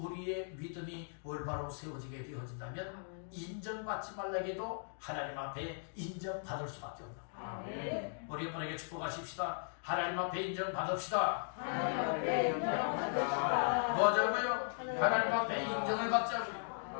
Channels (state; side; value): silent; right; digital silence